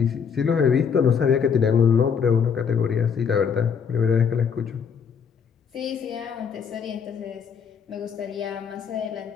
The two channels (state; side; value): quieter; right; 6.7 dB